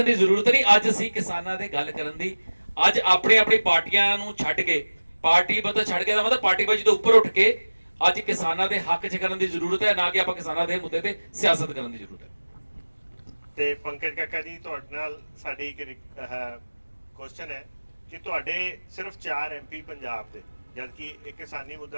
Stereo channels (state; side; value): inverted; both; correlation -1.00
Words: ਦੀ ਜ਼ਰੂਰਤ ਨਹੀਂ। ਅੱਜ ਅਸੀਂ ਕਿਸਾਨਾਂ ਦੇ ਗੱਲ ਕਰਨ ਦੀ, ਅੱਜ ਆਪਣੀ ਪਾਰਟੀਆਂ ਨੂੰ ਛੱਡ ਕੇ, ਪਾਰਟੀ ਬਦਲ ਛੱਡ ਕੇ ਦਾ ਮਤਲਬ ਪਾਰਟੀਬਾਜ਼ੀ ਤੋਂ ਉੱਪਰ ਉੱਠ ਕੇ ਅੱਜ ਕਿਸਾਨਾਂ ਦੇ ਹੱਕ 'ਚ ਕਰਨ ਦੀ ਜ਼ਰੂਰਤ ਹੈ, ਨਾ ਕਿ ਆਪਾਂ ਕਿਸਾਨਾਂ ਦੇ ਮੁੱਦੇ ਤੇ ਸਿਆਸਤ ਕਰਨ ਦੀ ਜ਼ਰੂਰਤ ਹੈ। ਤੇ ਪੰਕਜ ਕਾਕਾ ਜੀ, ਤੁਹਾਡੇ ਨਾਲ ਸਾਡੀ ਇੱਕ ਕੁਐਸਚਨ ਹੈ ਕਿ ਤੁਹਾਡੇ ਸਿਰਫ 4 MP ਪੰਜਾਬ ਦੇ, ਜਦਕਿ ਇਹ ਕਿਸਾਨੀ